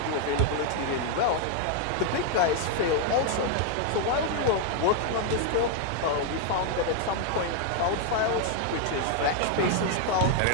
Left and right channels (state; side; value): different; both; correlation 0.00